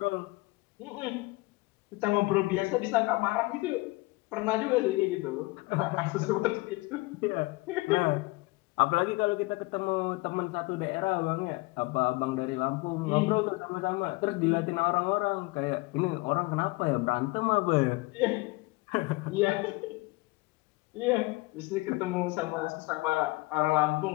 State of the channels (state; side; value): quieter; right; 23.4 dB